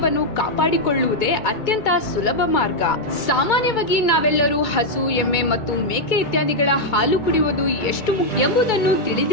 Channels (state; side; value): late; right; 2.3 ms